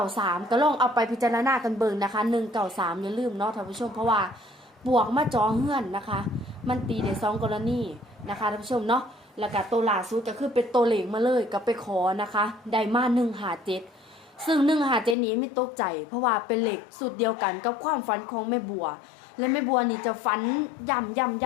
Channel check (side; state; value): right; drops out; at 15.2 s